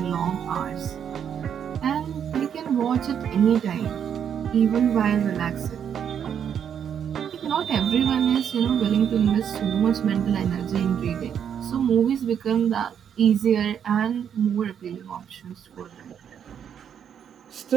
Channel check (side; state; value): left; quieter; 8.4 dB